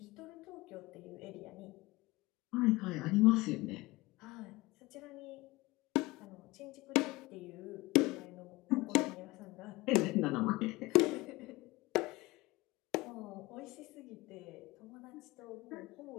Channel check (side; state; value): right; quieter; 21.3 dB